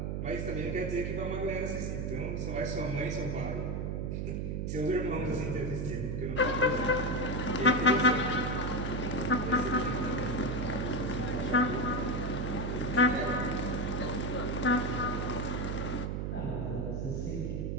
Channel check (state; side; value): noise; right; hum, 1 dB below the sound